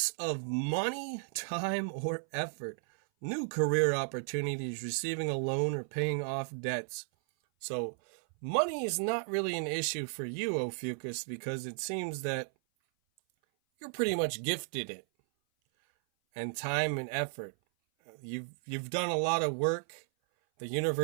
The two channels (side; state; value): left; silent; 55 dB below the other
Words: of money, time, or effort. new career opportunities, receiving a loan, or paying off debts. So money is not really an issue for you, Ophiuchus, because it seems that you're pretty much gifted it. And time and effort. You've done a lot of work. The